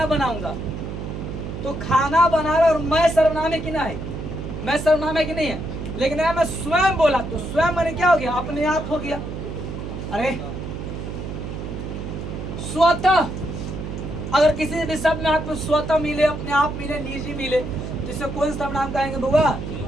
बनाऊंगा, तो खाना बना रहा और मैं सर्वनाम है कि ना है? मैं सर्वनाम है कि नहीं है? लेकिन मैं स्वयं बोला तो स्वयं मैंने क्या हो गया? अपने आप हो गया। अरे स्वतः, अगर किसी भी शब्द में आपको स्वतः मिले, अपने आप मिले, निजी मिले, तो इसे कौन सर्वनाम कहेंगे बुआ?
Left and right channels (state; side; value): noise; right; hum, 7 dB below the sound